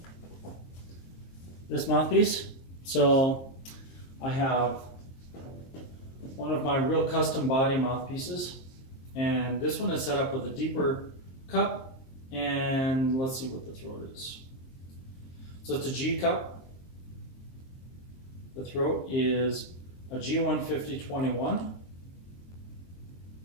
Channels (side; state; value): right; late; 23 ms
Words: this mouthpiece. So I have one of my real custom body mouthpieces, and this one is set up with a deeper cup. And let's see what the throat is. So it's a G cup. The throat is a G150-21.